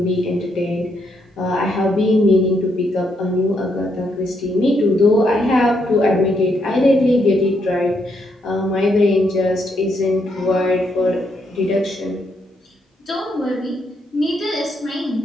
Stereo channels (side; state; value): both; normal; correlation 0.76